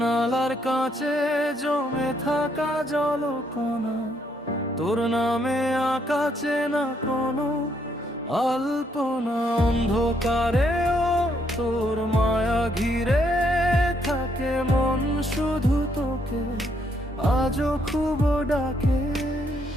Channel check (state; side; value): normal; both; correlation 0.72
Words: কাছে জমে থাকা জলকণা, তোর নামে আকাছে না কোনো আলপনা। অন্ধকারেও তোর মায়া ঘিরে থাকে, মন শুধু তোকে আজও খুব ডাকে।